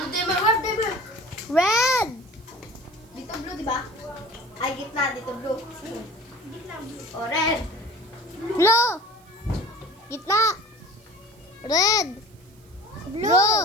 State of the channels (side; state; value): right; noise; hiss, 29 dB below the sound